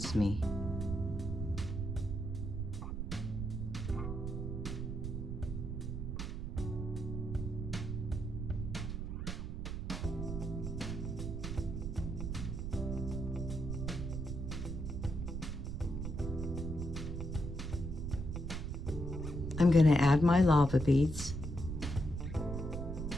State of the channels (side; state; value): right; noise; rumble, 4 dB below the sound